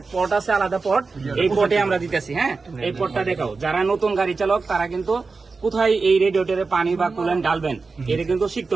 পট আছে, আলাদা পট, এই পটে আমরা দিতেছি। হ্যাঁ, এই পটটা দেখাও। যারা নতুন গাড়ি চালক তারা কিন্তু কোথায় এই রেডিয়েটরে পানি বা কুল্যান্ট ডালবেন এটা কিন্তু শিখতে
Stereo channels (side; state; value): left; quieter; 4.2 dB